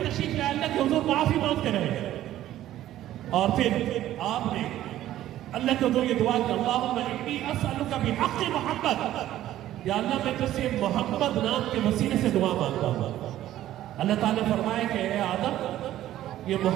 تشریف لائے، اللہ کے حضور معافی مانگتے رہے، اور پھر آپ نے اللہ کے حضور یہ دعا کہ اللہم انی اسألک بحق محمد، یا اللہ میں تجھ سے محمد نام کے وسیلے سے دعا مانگتا ہوں۔ اللہ تعالیٰ نے فرمایا کہ اے آدم یہ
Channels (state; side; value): quieter; left; 13.3 dB